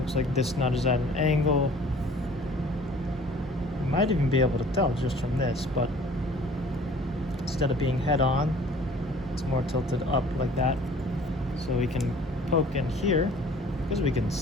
like this nut is at an angle. You might even be able to tell just from this, but instead of being head on, it's more tilted up like that. So we can poke in here, because we can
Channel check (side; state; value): both; normal; correlation 0.51